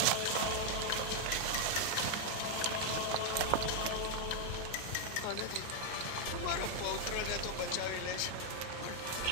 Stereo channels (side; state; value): both; different; correlation 0.00